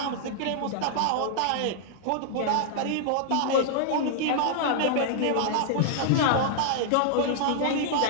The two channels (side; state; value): both; different; correlation -0.01